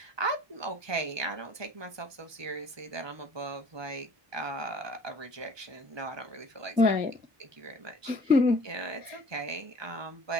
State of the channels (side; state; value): left; late; 1.2 ms